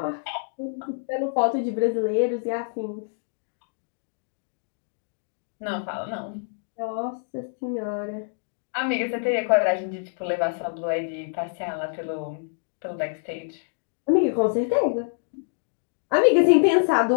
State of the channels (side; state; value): right; silent; digital silence